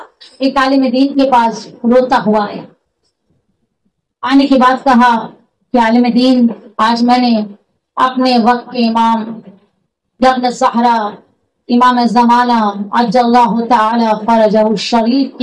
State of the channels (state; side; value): identical; both; correlation 1.00